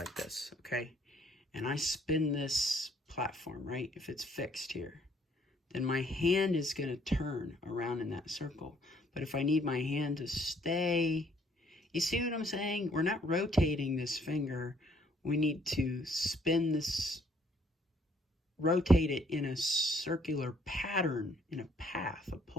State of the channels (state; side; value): normal; both; correlation 0.64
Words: this, okay, and I spin this platform, right, if it's fixed here, then my hand is going to turn around in that circle. But if I need my hand to stay, you see what I'm saying? We're not rotating this finger. We need to spin this, rotate it in a circular pattern, in a path, a